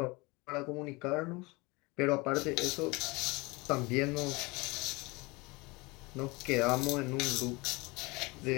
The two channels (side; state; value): right; quieter; 24.8 dB